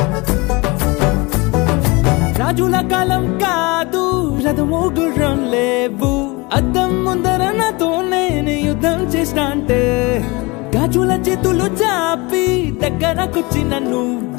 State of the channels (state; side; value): quieter; right; 25.4 dB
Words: రాజుల కాలం కాదు రథము గుర్రం లేవు అద్దం ముందర నాతో నేను యుద్ధం చేస్తా అంటే గాజుల చేతులు చాపి దగ్గరకొచ్చిన